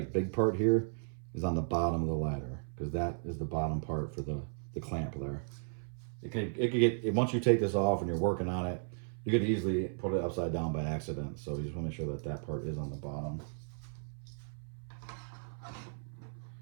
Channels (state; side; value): silent; left; 54 dB below the other